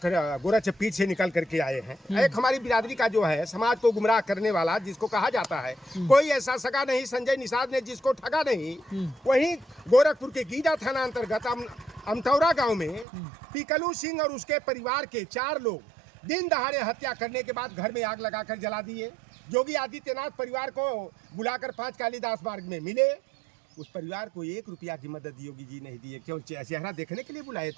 पीठ से निकल करके आए हैं। एक हमारी बिरादरी का जो है समाज को गुमराह करने वाला जिसको कहा जाता है, कोई ऐसा सगा नहीं संजय निषाद ने जिसको ठगा नहीं। वहीं गोरखपुर के गीडा थाना अंतर्गत अमतौरा गांव में पिकलू सिंह और उसके परिवार के 4 लोग दिन दहाड़े हत्या करने के बाद घर में आग लगाकर जला दिए। योगी आदित्यनाथ परिवार को बुलाकर 5 कालीदास मार्ग में मिले। उस परिवार को 1 रुपया की मदद योगी जी नहीं दिए, क्यों? चेहरा देखने के लिए बुलाए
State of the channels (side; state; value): left; drops out; at 13.1 s